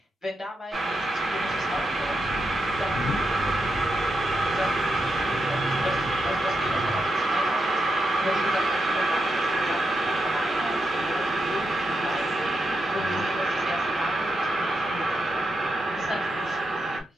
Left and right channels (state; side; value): normal; both; correlation 0.85